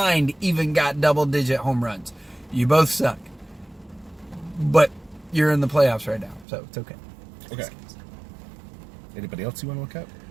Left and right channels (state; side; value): drops out; left; at 6.5 s